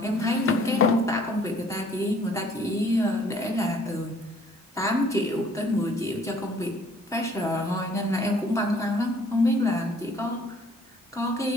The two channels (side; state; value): both; normal; correlation 0.58